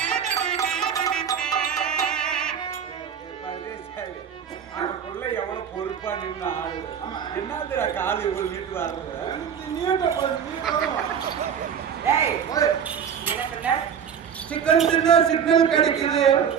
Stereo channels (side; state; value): left; quieter; 7.8 dB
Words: என்னதுடா காலு இவ்வளவு நீட்டு வர்றது? சிக்கன் தின்னா சிக்னல் கிடைக்குது.